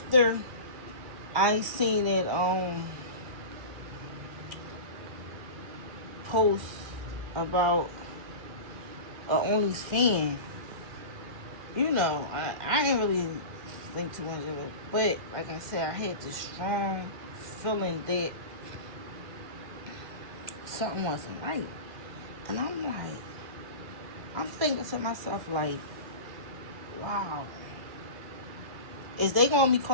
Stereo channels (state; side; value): late; left; 1.9 ms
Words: I seen it post about a OnlyFans, I didn't really think too much of it. But like I said, I had this strong feeling that something wasn't right. And I'm thinking to myself like, wow, is they gonna be